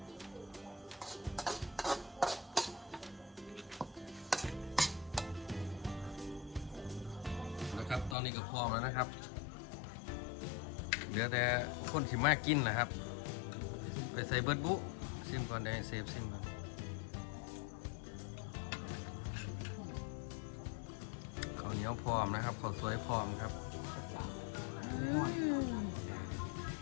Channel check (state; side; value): drops out; right; at 8.2 s